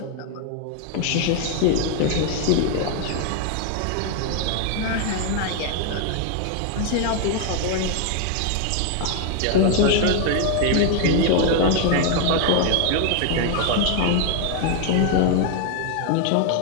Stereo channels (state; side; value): different; both; correlation 0.00